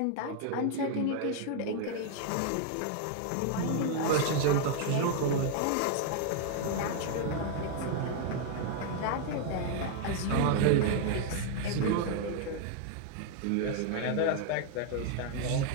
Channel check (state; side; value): different; both; correlation 0.00